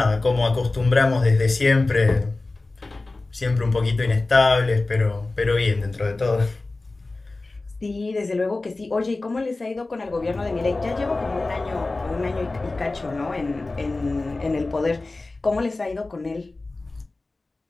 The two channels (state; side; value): quieter; right; 3.2 dB